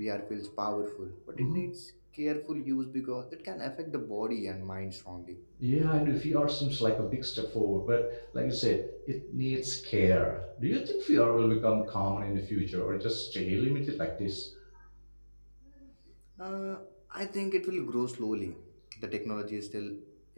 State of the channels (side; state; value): both; inverted; correlation -1.00